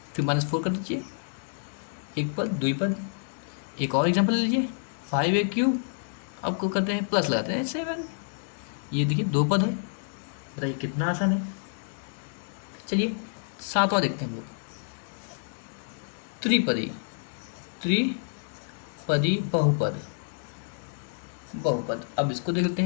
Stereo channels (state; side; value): silent; right; digital silence